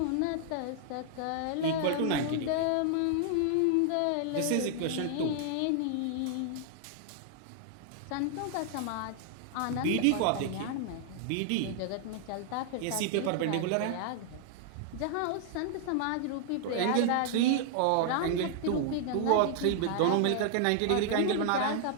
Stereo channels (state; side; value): different; both; correlation 0.00